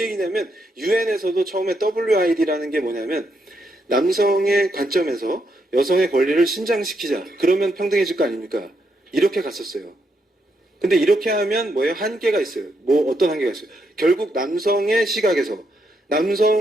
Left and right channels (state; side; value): normal; both; correlation 0.79